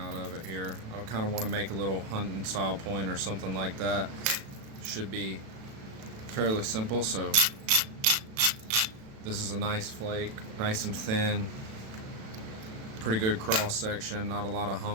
of it here. I kind of want to make a little hunting style point or something like that. Should be fairly simple. So this is a nice flake, nice and thin, pretty good cross section, not a lot of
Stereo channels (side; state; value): left; late; 36 ms